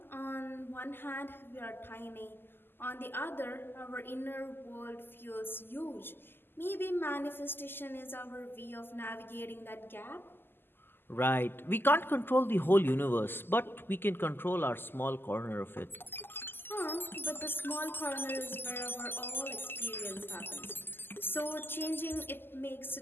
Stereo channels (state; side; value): late; right; 0.10 ms